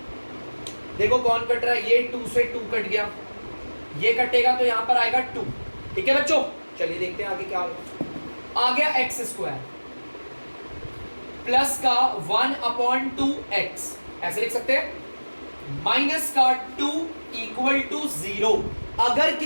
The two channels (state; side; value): inverted; both; correlation -1.00